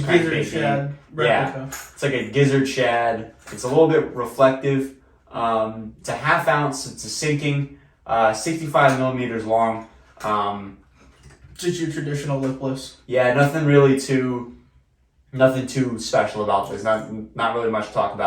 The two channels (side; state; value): both; identical; correlation 1.00